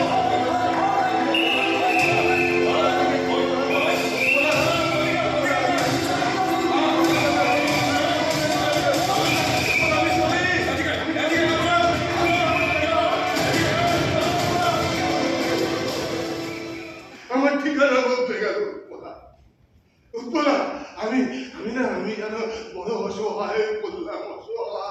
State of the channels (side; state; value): both; identical; correlation 1.00